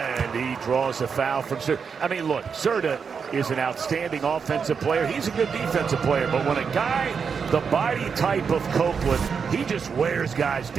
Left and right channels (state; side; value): quieter; left; 6.1 dB